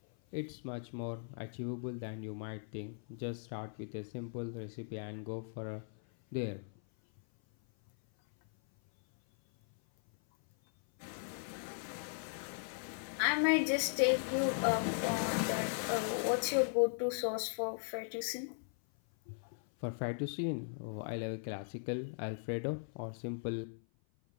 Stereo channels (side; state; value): right; silent; 52 dB below the other